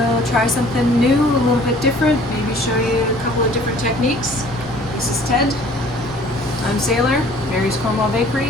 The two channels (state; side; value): normal; both; correlation 0.53